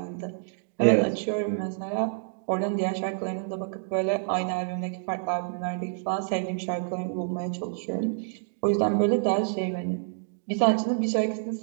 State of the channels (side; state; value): left; silent; digital silence